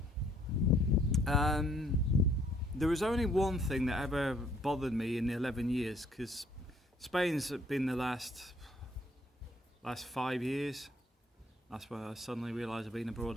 there was only one thing that ever bothered me in the 11 years, because Spain's been the last 5 years. That's when I suddenly realised I've been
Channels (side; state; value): both; normal; correlation 0.64